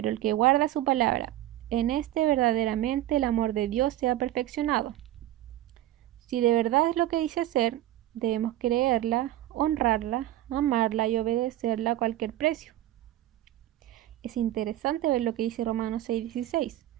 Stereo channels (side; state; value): left; quieter; 14.1 dB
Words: el que guarda su palabra, en este verdaderamente el amor de Dios se ha perfeccionado. Si de verdad es lo que dice ser, debemos creerla, honrarla, amarla y obedecerla a cualquier precio. Es interesante ver lo que dice Romanos 6:16.